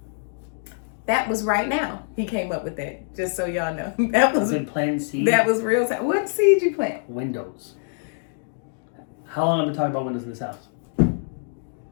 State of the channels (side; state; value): right; silent; digital silence